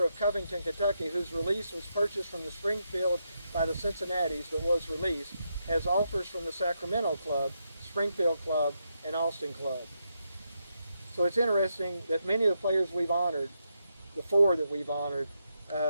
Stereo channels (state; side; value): inverted; both; correlation -0.82